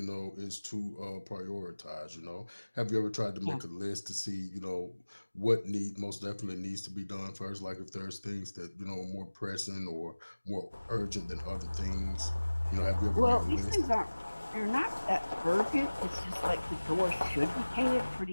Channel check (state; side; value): inverted; both; correlation -1.00